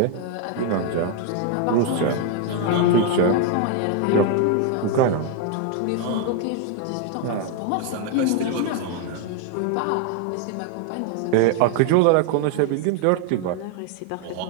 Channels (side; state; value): both; different; correlation 0.01